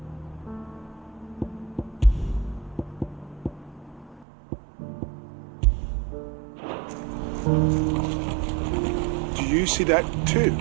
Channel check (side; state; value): left; drops out; at 4.2 s